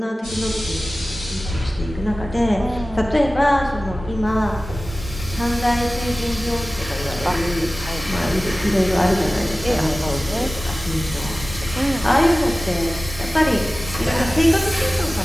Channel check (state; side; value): normal; both; correlation 0.96